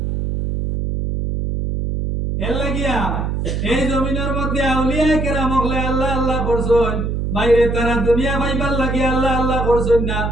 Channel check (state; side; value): noise; right; hum, 1 dB below the sound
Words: এর লাগিয়া এই জমিনের মধ্যে আউলিয়া কেরাম হলে আল্লাহ আল্লাহ করছেন বাইরে তারা দুনিয়া পাইবার লাগি আল্লাহ আল্লাহ করছেন না